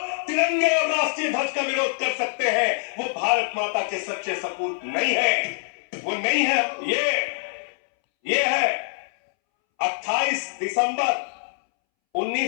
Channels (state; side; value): silent; right; 62 dB below the other